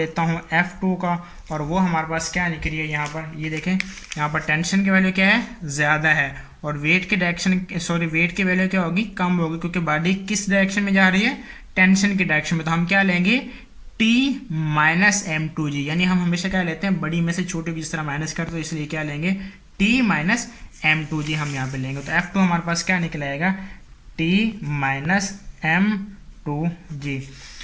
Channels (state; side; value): identical; both; correlation 1.00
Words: हूँ F2 का, और वो हमारे पास क्या निकल रही है, यहाँ पर ये देखें, यहाँ पर टेंशन की वैल्यू क्या है, ज़्यादा है, और वेट की डायरेक्शन, सॉरी वेट की वैल्यू क्या होगी, कम होगी, क्योंकि बॉडी किस डायरेक्शन में जा रही है, टेंशन की डायरेक्शन में। तो हम क्या लेंगे, T माइनस M2G, यानी हम हमेशा क्या लेते हैं, बड़ी में से छोटे को जिस तरह माइनस करते, तो इसलिए क्या लेंगे, T माइनस M2G हम यहाँ पे लेंगे। तो F2 हमारे पास क्या निकल आएगा, T माइनस M2G।